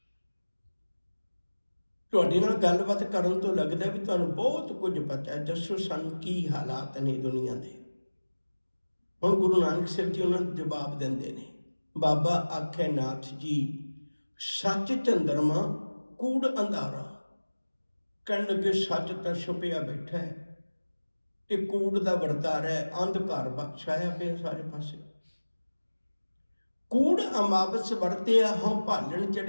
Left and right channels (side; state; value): both; inverted; correlation -1.00